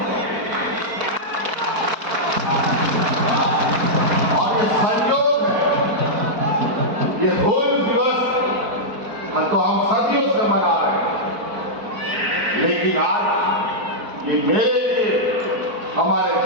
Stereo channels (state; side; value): late; left; 4.5 ms